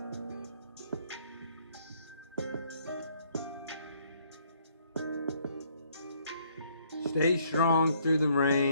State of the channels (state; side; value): inverted; both; correlation -0.66